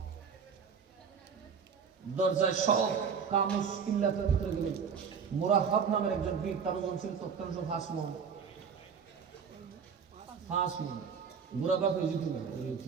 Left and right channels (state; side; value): quieter; left; 6.4 dB